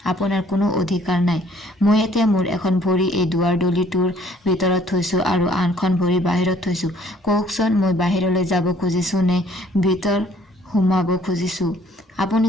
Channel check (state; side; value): normal; both; correlation 0.60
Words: আপোনাৰ কোনো অধিকাৰ নাই। মই এতিয়া মোৰ এখন ভৰি এই দুৱাৰদলিটোৰ ভিতৰত থৈছো আৰু আনখন ভৰি বাহিৰত থৈছো। কওকচোন, মই বাহিৰলৈ যাব খুজিছো নে ভিতৰ সোমাব খুজিছো? আপুনি